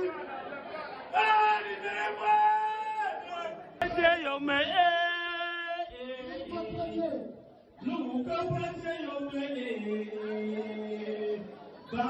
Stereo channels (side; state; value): both; identical; correlation 1.00